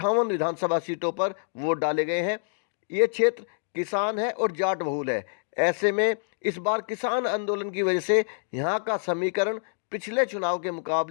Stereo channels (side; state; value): right; silent; digital silence